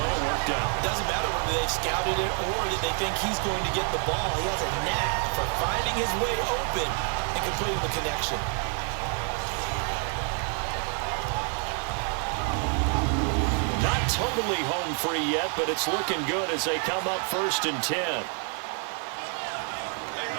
It worked out. Doesn't matter whether they've scouted it or that they think he's going to get the ball. He has a knack for finding his way open and completing the connection. Not totally home free yet, but it's looking good as they come up 1st and 10.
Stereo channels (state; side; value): quieter; left; 38.6 dB